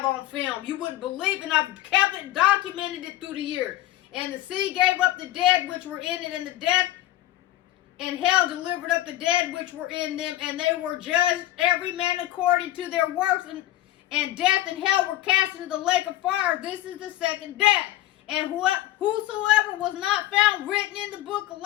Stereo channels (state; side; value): quieter; right; 14.9 dB